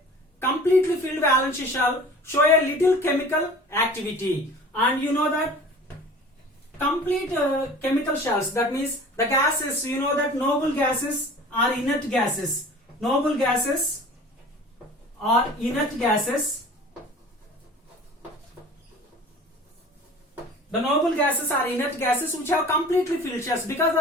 completely filled valence shell show a little chemical activity, and you know that complete chemical shells, that means the gases, you know that noble gases are inert gases. Noble gases are inert gases. The noble gases are inert gases which have completely filled shells. Because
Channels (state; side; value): normal; both; correlation 0.43